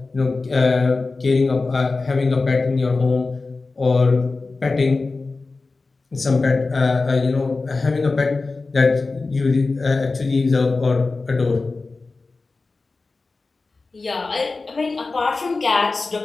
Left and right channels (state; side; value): quieter; right; 3.8 dB